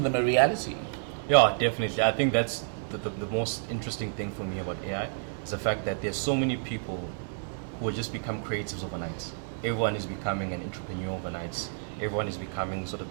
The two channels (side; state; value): left; silent; digital silence